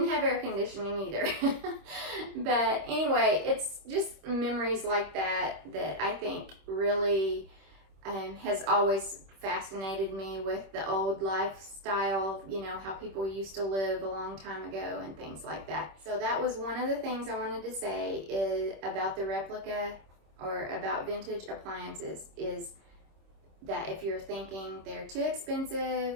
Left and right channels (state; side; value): late; left; 26 ms